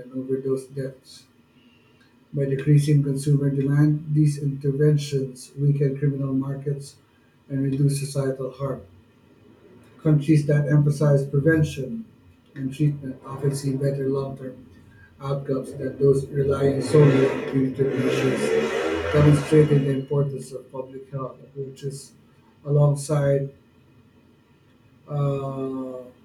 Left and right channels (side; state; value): both; identical; correlation 1.00